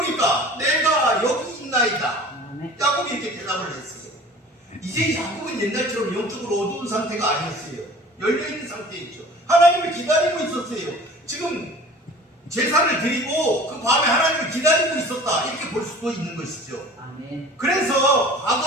내가 여기 있나이다. 야곱이 이렇게 대답을 했어요. 2절 이제 야곱은 옛날처럼 영적으로 어두운 상태가 아니었어요. 열려있는 상태였죠. 하나님을 기다리고 있었어요. 지금 제사를 드리고 그 밤에 하나님을 기다리고 있었다, 이렇게 볼 수도 있는 것이죠. 아멘. 그래서 과거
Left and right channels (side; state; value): both; normal; correlation 0.44